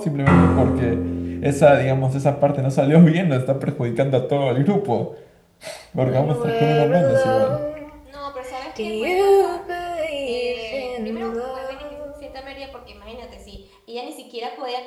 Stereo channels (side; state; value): both; identical; correlation 1.00